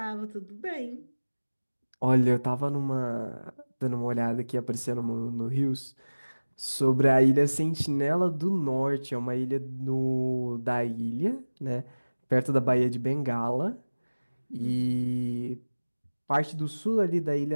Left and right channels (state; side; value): inverted; both; correlation -1.00